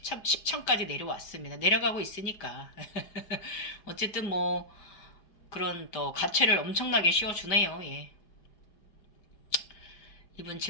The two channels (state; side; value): late; right; 5.1 ms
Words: 내려왔습니다. 내려가고 있으니까. 어쨌든 뭐 그런 또 가채를 엄청나게 씌워주네요. 예. 이분